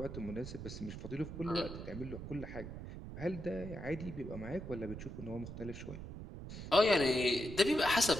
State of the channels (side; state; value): right; noise; rumble, 9 dB below the sound